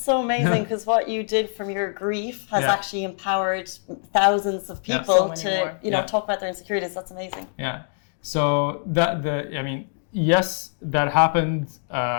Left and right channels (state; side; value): silent; right; 63 dB below the other